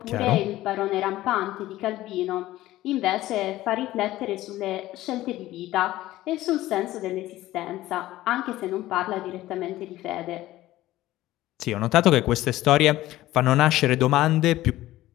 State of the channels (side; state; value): right; quieter; 15.8 dB